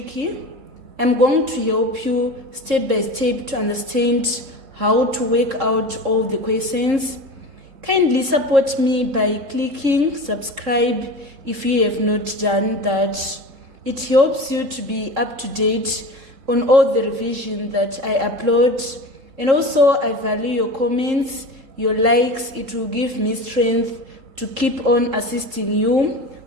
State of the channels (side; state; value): left; late; 3.7 ms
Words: I'm going to help you step by step to understand how to work out all the questions. Kindly support me by clicking subscribe if you have not done that. It helps you to be up to date on all the revision that I upload, and also I value your comments, your likes. It will give me strength to keep on assisting you